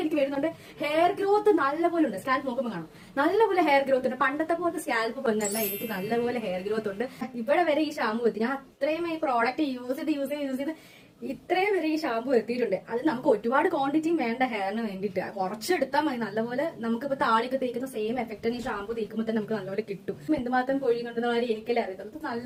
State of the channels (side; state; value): both; identical; correlation 1.00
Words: എനിക്ക് വരുന്നുണ്ട്. ഹെയർ ഗ്രോത്ത് നല്ലപോലെ ഉണ്ട്. സ്കാൽപ്പ് നോക്കുമ്പോൾ കാണും നല്ലപോലെ ഹെയർ ഗ്രോത്ത് ഉണ്ട്. പണ്ടത്തെ പോലത്തെ സ്കാൽപ്പ് വന്നല്ല, എനിക്ക് നല്ലപോലെ ഹെയർ ഗ്രോത്ത് ഉണ്ട്. ഇവിടെ വരെ ഈ ഷാമ്പു എത്തി. ഞാൻ അത്രയും ഈ പ്രോഡക്റ്റ് യൂസ് ചെയ്ത് ഇത്രയും വരെ ഈ ഷാമ്പു എത്തിയിട്ടുണ്ട്. അത് നമുക്ക് ഒരുപാട് ക്വാണ്ടിറ്റിയും വേണ്ട ഹെയറിന് വേണ്ടിയിട്ട്. കുറച്ചെടുത്താൽ മതി. നല്ലപോലെ നമുക്കിപ്പോ താളിയൊക്കെ തേക്കുന്ന സെയിം എഫക്റ്റ് ഈ ഷാമ്പു തേക്കുമ്പോൾ തന്നെ നമുക്ക് നല്ലപോലെ കിട്ടും. എന്തുമാത്രം പൊഴിയുന്നുണ്ടെന്ന കാര്യം എനിക്കല്ലേ അറിയത്തുള്ളൂ.